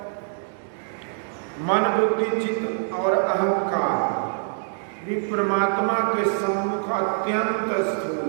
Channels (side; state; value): left; silent; digital silence